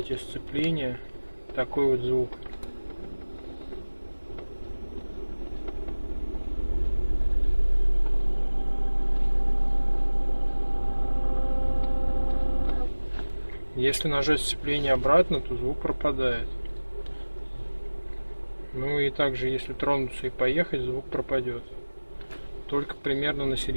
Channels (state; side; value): inverted; both; correlation -1.00